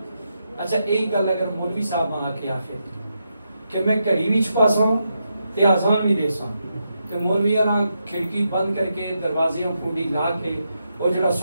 اچھا ایک گل اگر مولوی صاحب ماں آکے آخر کہ میں کڑی بھی چھپا سا ہوں تے آزان بھی دے سا ہوں تے مولوی کھڑکی بند کر کے دروازیاں پھونڈی لا کے وہ جڑا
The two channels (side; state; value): both; inverted; correlation -0.84